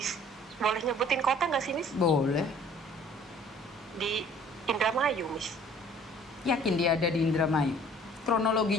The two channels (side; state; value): both; normal; correlation 0.53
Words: boleh nyebutin kota nggak sih Miss? Boleh. Di Indramayu Miss. Yakin dia ada di Indramayu?